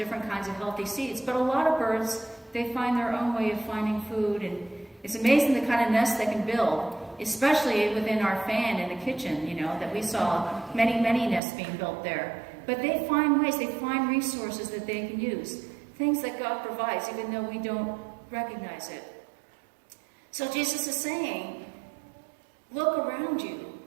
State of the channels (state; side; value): drops out; left; at 11.4 s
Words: kinds of healthy seeds, but a lot of birds, they find their own way of finding food, and it's amazing the kind of nest they can build. especially within our fan in the kitchen, that we saw many nests being built there. But they find ways, they find resources that they can use, things that God provides, even though we don't recognize it. So Jesus is saying, look around you.